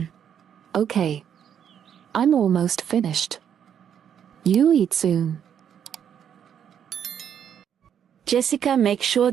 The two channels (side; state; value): left; quieter; 8.7 dB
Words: Okay. I'm almost finished. You eat soon. Jessica, make sure